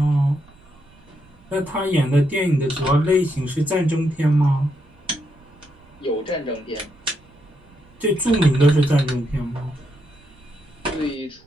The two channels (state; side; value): noise; right; rumble, 28 dB below the sound